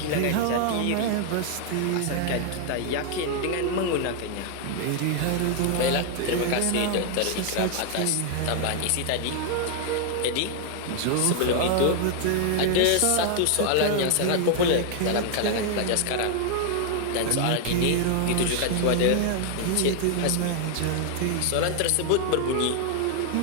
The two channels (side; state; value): both; different; correlation 0.00